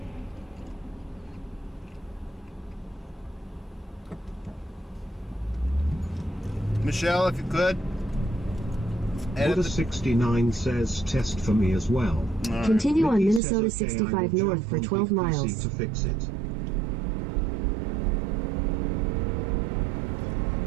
Michelle, if you could. Buddha69 says test for me as well. Right. Continue on Mickey Minnesota says, okay, 65 I will north jump for on 12 PC miles. to fix it.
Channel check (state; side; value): drops out; left; at 13.4 s